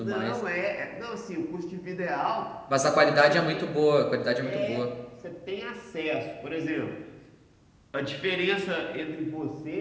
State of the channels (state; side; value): identical; both; correlation 1.00